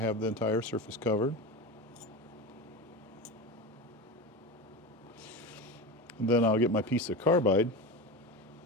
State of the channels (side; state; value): both; normal; correlation 0.24